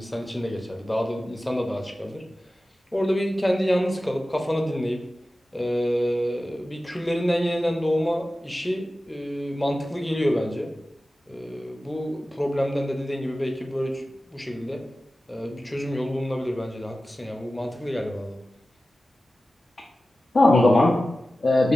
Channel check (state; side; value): normal; both; correlation 0.95